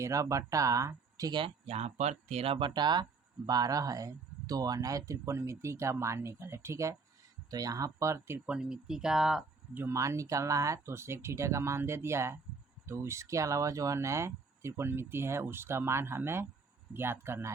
बटा, ठीक है, यहाँ पर 13/12 है तो अनय त्रिकोणमिति का मान निकले। ठीक है, तो यहाँ पर त्रिकोणमिति का जो मान निकालना है तो सेक थीटा का मान दे दिया है, तो इसके अलावा जो है नए त्रिकोणमिति है उसका मान हमें ज्ञात करना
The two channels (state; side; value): quieter; left; 4.5 dB